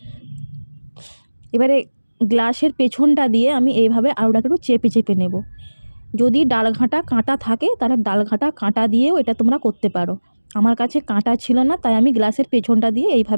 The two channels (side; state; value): both; inverted; correlation -1.00